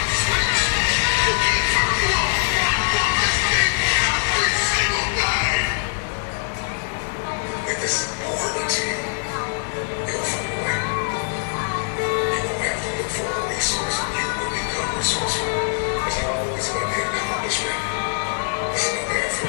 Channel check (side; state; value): right; silent; digital silence